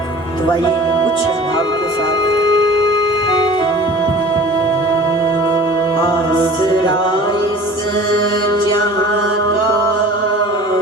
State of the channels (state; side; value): normal; both; correlation 0.43